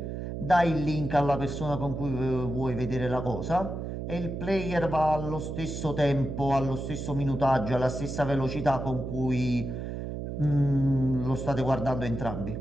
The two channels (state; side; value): noise; right; hum, 6 dB below the sound